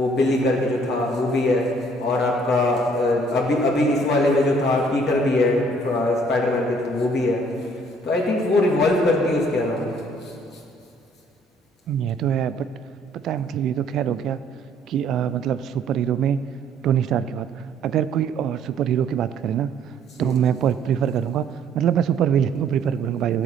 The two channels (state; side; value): normal; both; correlation 0.61